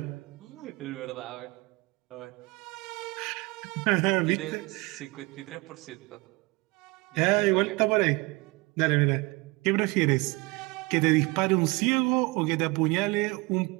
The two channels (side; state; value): left; quieter; 25.0 dB